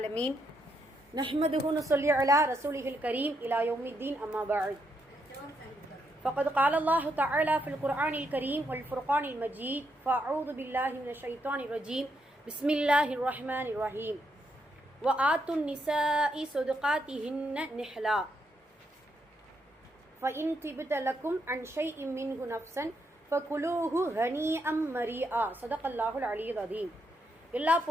نحمده ونصلي على رسوله الكريم إلى يوم الدين أما بعد فقد قال الله تعالى في القرآن الكريم والفرقان المجيد فأعوذ بالله من الشيطان الرجيم بسم الله الرحمن الرحيم وآتوا النساء صدقاتهن نحلا فإن طبت لكم عن شيء منه نفسا فكلوه هنيئا مريئا صدق الله العلي العظيم. எல்லா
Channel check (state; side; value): normal; both; correlation 0.78